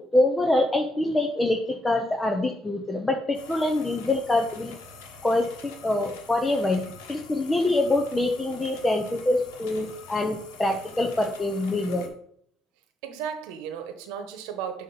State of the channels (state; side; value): normal; both; correlation 0.81